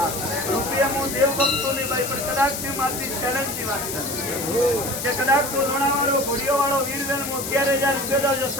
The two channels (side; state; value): left; noise; hiss, 5 dB below the sound